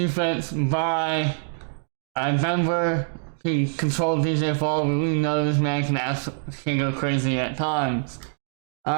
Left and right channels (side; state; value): left; silent; 62 dB below the other